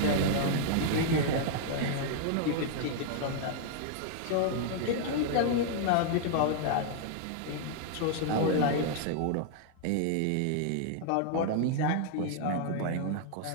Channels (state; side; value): different; both; correlation 0.00